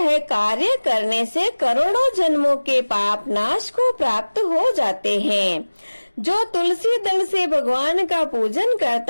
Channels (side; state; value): both; inverted; correlation -1.00